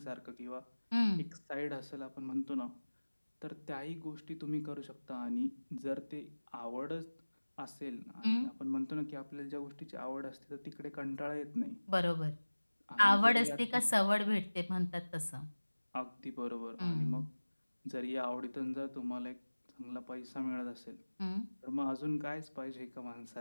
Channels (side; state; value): both; inverted; correlation -1.00